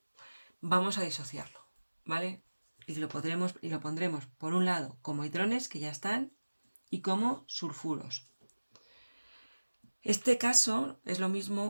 vamos a disociarlo, ¿vale? Y lo pondremos por un lado como hidrones que ya están y como sulfuros. Este caso es lo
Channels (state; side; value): inverted; both; correlation -1.00